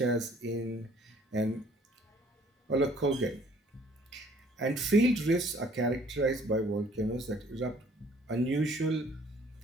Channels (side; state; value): both; normal; correlation 0.58